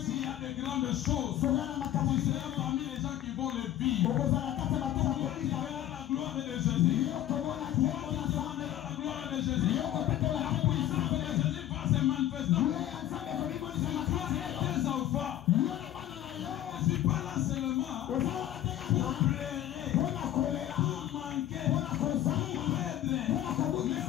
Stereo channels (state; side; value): quieter; right; 12.4 dB